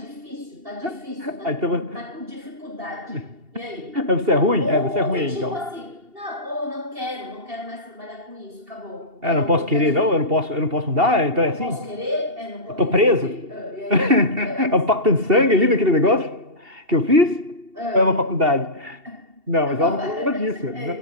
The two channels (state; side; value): late; left; 2.7 ms